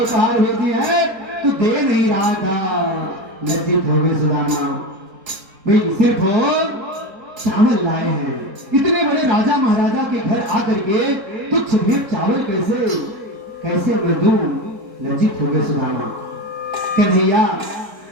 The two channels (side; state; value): left; late; 4.6 ms